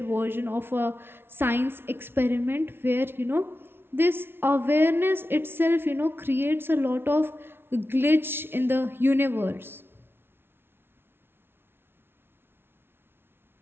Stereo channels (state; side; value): late; left; 0.11 ms